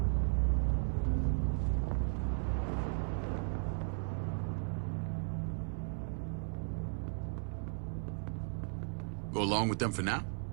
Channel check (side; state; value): left; silent; 54 dB below the other